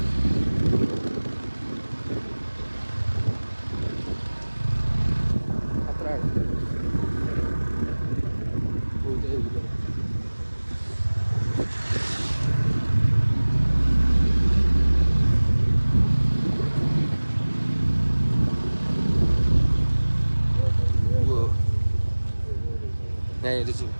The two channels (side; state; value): both; inverted; correlation -1.00